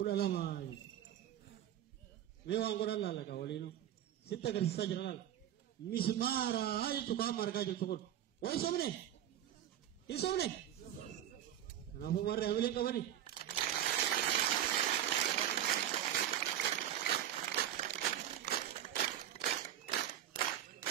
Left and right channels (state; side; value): quieter; left; 11.3 dB